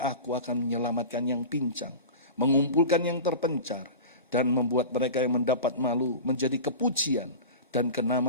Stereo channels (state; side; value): inverted; both; correlation -0.31